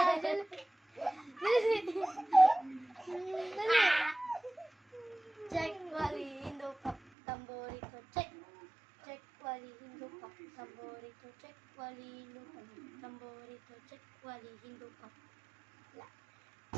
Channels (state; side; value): drops out; left; at 7.0 s